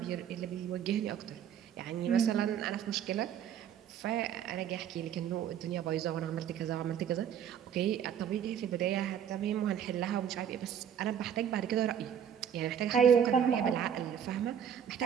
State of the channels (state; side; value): quieter; left; 8.9 dB